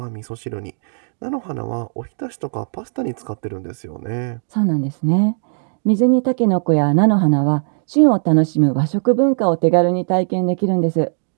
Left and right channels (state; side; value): silent; left; digital silence